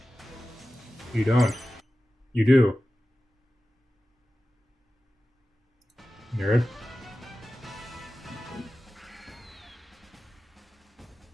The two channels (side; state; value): both; normal; correlation 0.95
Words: You don't. You do. Nerd.